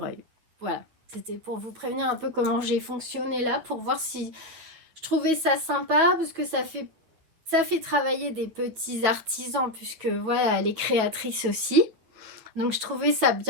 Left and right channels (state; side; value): late; left; 9.5 ms